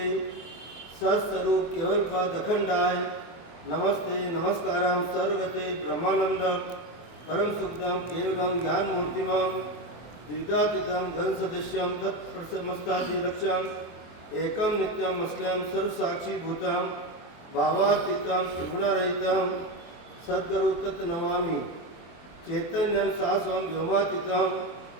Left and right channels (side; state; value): right; late; 24 ms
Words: सत्स्वरूप केवल पद अखंडाय नमस्ते नमस्कारम सर्वगते ब्रह्मानंदम परम सुखदम केवलम ज्ञान मूर्तिमम द्विदातीतम घन सदस्यम तत्प्रसमस्तादिलक्ष्यम एकम नित्यम असलम सर्वसाक्षी भूतम भावातीतम त्रिगुणरहितम सद्गुरु तत्नमामि चैतन्यम शाश्वम व्योमातीतम